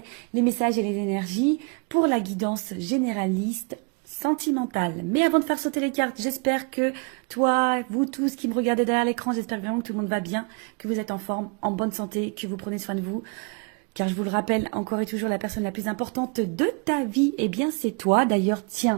les messages et les énergies pour la guidance généraliste sentimentale. Mais avant de faire sauter les cartes, j'espère que toi, vous tous qui me regardez derrière l'écran, j'espère vraiment que tout le monde va bien, que vous êtes en forme, en bonne santé, que vous prenez soin de vous. Car je vous le rappelle, encore et toujours, la personne la plus importante de ta vie, eh bien c'est toi. D'ailleurs,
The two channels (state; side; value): quieter; left; 33.3 dB